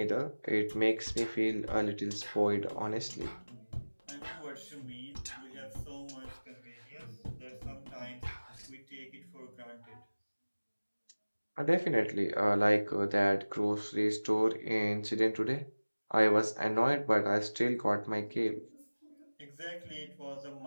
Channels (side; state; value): both; inverted; correlation -1.00